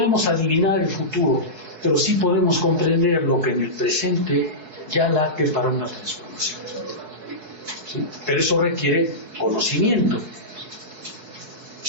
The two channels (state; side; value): late; left; 4.7 ms